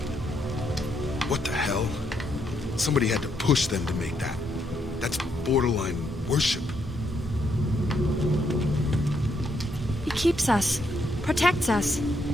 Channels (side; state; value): both; normal; correlation 0.76